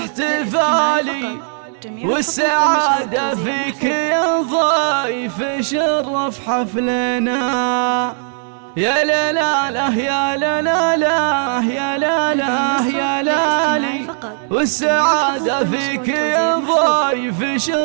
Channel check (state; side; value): silent; left; 65 dB below the other